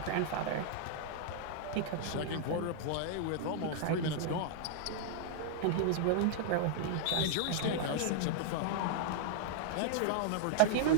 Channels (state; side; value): different; both; correlation -0.01